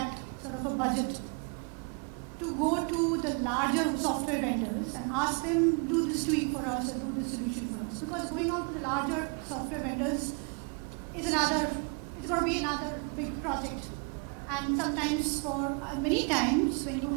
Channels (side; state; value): left; quieter; 36.1 dB